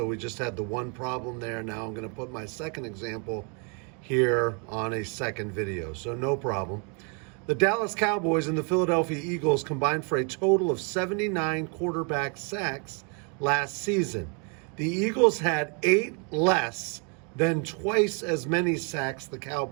we just had the one problem there. Now I'm going to put my second example here on a second video, so no problem. The Dallas Cowboys and the Philadelphia Eagles combined for a total of 79 quarterback sacks last season. The Eagles had 8 less than twice as many sacks the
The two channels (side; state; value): left; quieter; 36.1 dB